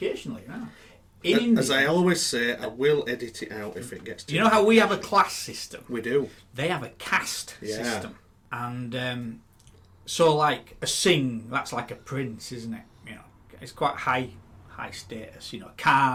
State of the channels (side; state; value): both; identical; correlation 1.00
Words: here now. In India, as I always say, I will edit it out if it gets too you know how we have a class system? We do. They have a caste Yeah. system. And so, like, a Singh, that's like a prince, isn't it? It's quite high status.